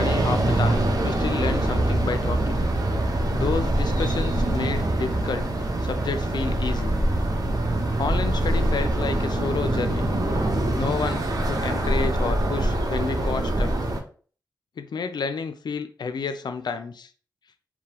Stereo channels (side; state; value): both; normal; correlation 0.81